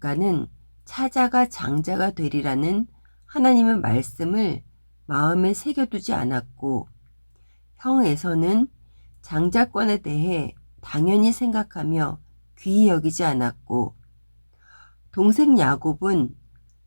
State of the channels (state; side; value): inverted; both; correlation -1.00